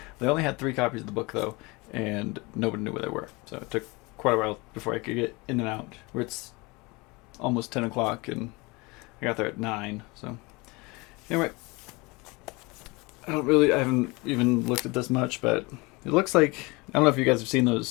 They only had 3 copies of the book though, and nobody knew where they were. So it took quite a while before I could get in and out. Where it's almost 10 o'clock and I got there at 9. So anyway, I haven't even looked at this much, but it looks like, I don't know if you guys have seen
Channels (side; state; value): right; quieter; 25.5 dB